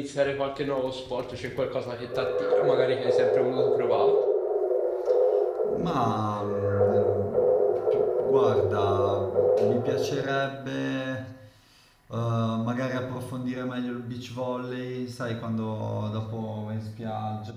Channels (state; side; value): identical; both; correlation 1.00